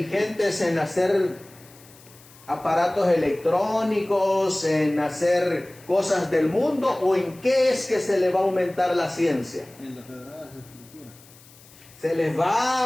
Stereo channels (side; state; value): left; noise; hiss, 24 dB below the sound